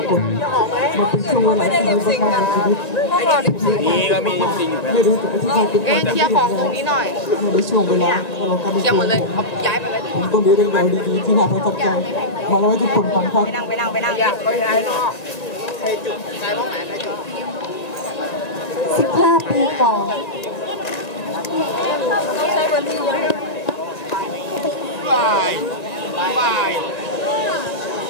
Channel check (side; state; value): right; late; 1.8 ms